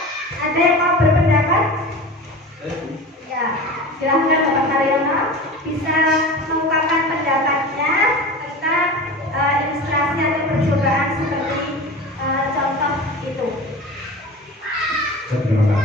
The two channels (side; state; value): both; normal; correlation 0.33